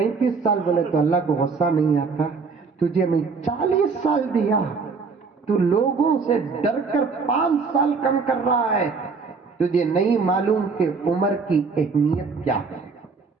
سال بولے تو اللہ کو غصہ نہیں آتا. تجھے میں 40 سال دیا، تو لوگوں سے ڈر کر 5 سال کم کر رہا ہے. تجھے نہیں معلوم کہ عمر کی اہمیت کیا ہے.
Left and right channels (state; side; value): quieter; left; 4.8 dB